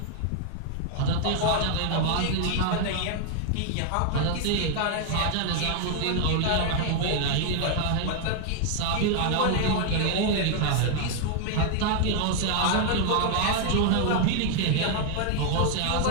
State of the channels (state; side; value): different; both; correlation 0.00